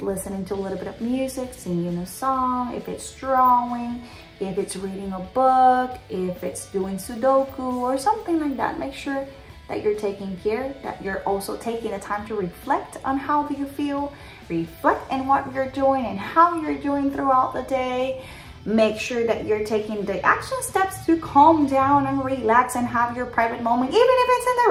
listening to a little bit of music, singing a song, if it's drawing, if it's reading a book, if it's doing Sudoku or something like that. Make sure that you're taking care, that you're also taking the time to reflect on how you feel, reflect on what you're doing and how you're doing throughout the day. Make sure that you're taking the action steps to calm down and relax and have your private moment, even if it's in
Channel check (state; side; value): identical; both; correlation 1.00